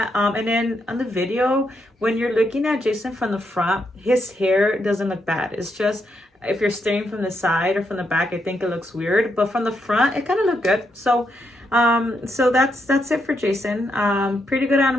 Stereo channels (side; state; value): both; normal; correlation 0.80